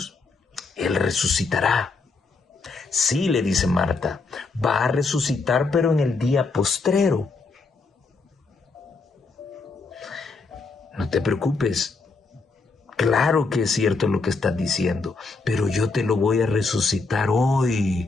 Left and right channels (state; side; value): quieter; right; 4.0 dB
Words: Él resucitará. Sí, le dice Marta, va a resucitar, pero en el día postrero. No te preocupes. Claro que es cierto lo que estás diciendo, pero yo te lo voy a resucitar hoy,